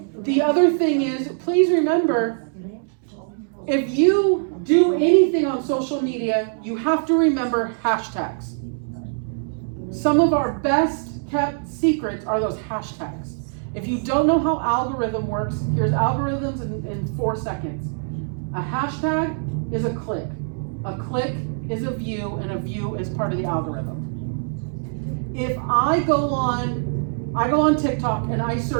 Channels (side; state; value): left; silent; digital silence